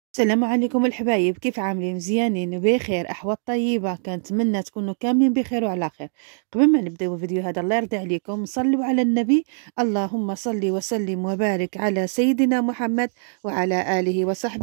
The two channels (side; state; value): left; silent; digital silence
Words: السلام عليكم الحبايب، كيف عاملين؟ مزيانين بخير، احوال طيبه. كنتمنى تكونوا كاملين بخير وعلى خير. قبل ما نبداو الفيديو هذا الله يرضي عليكم صلوا على النبي. اللهم صل وسلم وبارك على سيدنا محمد وعلى اله